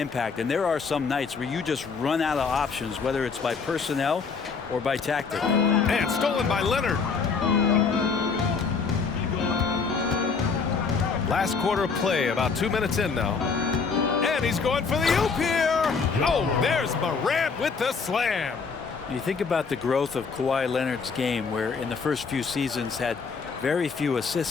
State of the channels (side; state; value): right; quieter; 5.2 dB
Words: And there are some nights where you just run out of options, whether it's by personnel or by tactic. And stolen by Leonard. Last quarter of play, about 2 minutes in now. And he's going for the oop here. Oh, there's Morant with the slam. You think about the growth of Kawhi Leonard's game, where in the first few seasons had very few